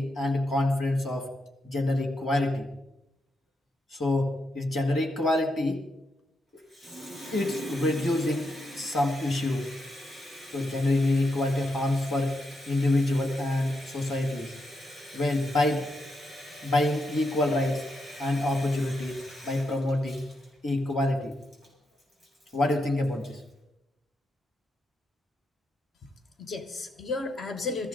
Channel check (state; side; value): normal; both; correlation 0.83